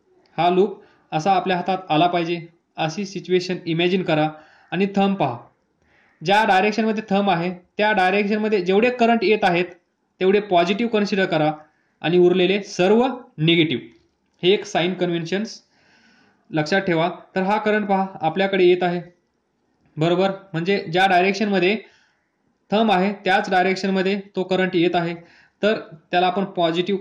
असा आपल्या हातात आला पाहिजे अशी सिच्युएशन इमॅजिन करा. आणि थंब पहा, ज्या डायरेक्शनमध्ये थंब आहे त्या डायरेक्शनमध्ये जेवढे करंट येत आहेत तेवढे पॉझिटिव्ह कन्सिडर करा, आणि उरलेले सर्व निगेटिव्ह. हे एक साइन कन्व्हेन्शन्स लक्षात ठेवा. तर हा करंट पहा आपल्याकडे येत आहे, बरोबर. म्हणजे ज्या डायरेक्शनमध्ये थंब आहे त्याच डायरेक्शनमध्ये तो करंट येत आहे, तर त्याला आपण पॉझिटिव्ह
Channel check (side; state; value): both; identical; correlation 1.00